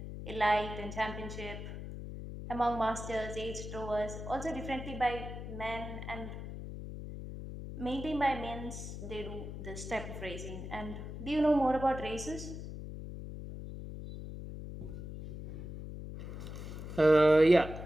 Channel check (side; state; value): left; noise; hum, 9 dB below the sound